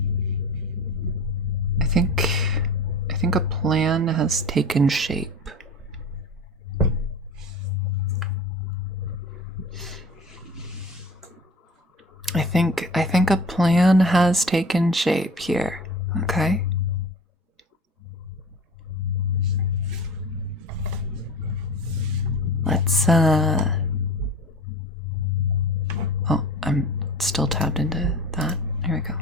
I think a plan has taken shape. I think a plan has taken shape here. Okay? Let's oh, I'm still tapped into that. Here we go.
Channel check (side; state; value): both; normal; correlation 0.38